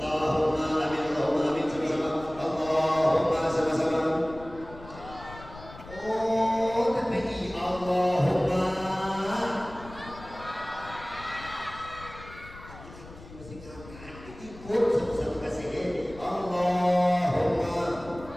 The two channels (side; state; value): left; noise; rumble, 17 dB below the sound